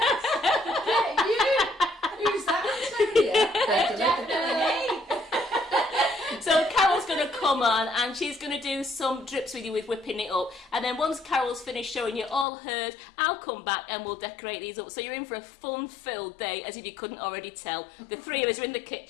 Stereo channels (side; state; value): right; drops out; at 12.5 s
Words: Yeah, you. Who's that? Definitely. So Carol's going to come on and she's going to do some drips with you with whipping it up, and then once Carol's finished showing you all hers, I'll come back and we'll decorate these up. So you're in for a fun-filled day, as if you couldn't already tell. The 3 of us are in the